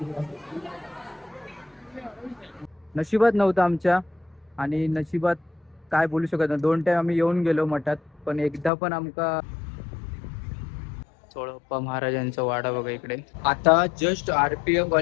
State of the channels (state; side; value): drops out; right; at 8.7 s